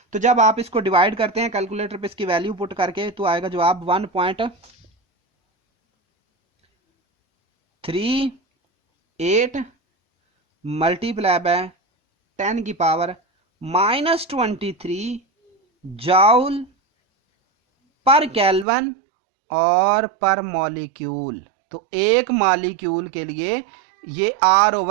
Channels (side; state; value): left; drops out; at 18.7 s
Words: तो जब आप इसको डिवाइड करते हैं कैलकुलेटर पे इसकी वैल्यू पुट करके, तो आएगा जवाब 1.38 मल्टीप्लाई बाय 10⁻⁻23 जूल पर केल्विन और पर मॉलिक्यूल। तो एक मॉलिक्यूल के लिए ये